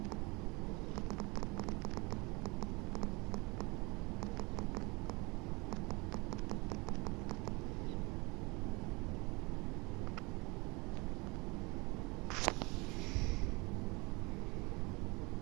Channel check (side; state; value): left; quieter; 26.3 dB